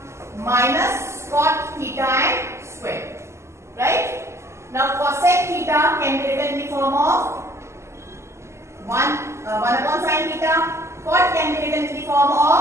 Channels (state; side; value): late; left; 0.13 ms